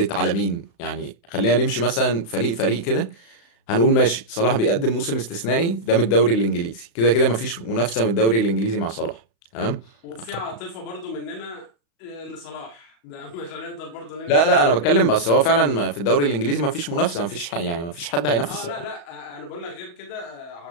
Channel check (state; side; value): late; right; 35 ms